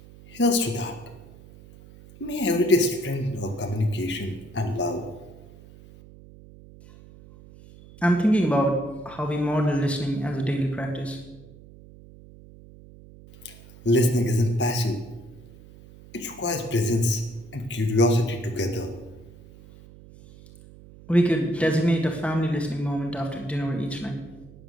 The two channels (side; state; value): right; noise; hum, 21 dB below the sound